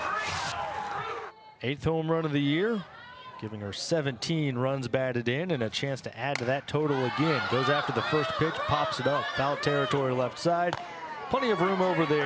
Eighth home run of the year, giving her 17 runs batted in and a chance to add to that total again. Goes after the first pitch, pops it up, foul territory left side. Plenty of room over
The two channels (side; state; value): both; identical; correlation 1.00